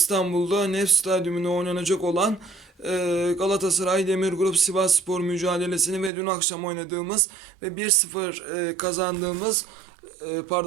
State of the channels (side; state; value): left; drops out; at 6.1 s